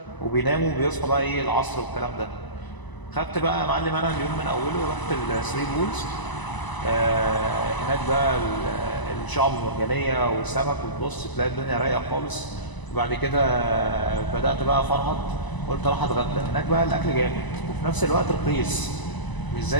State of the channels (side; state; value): right; late; 1.0 ms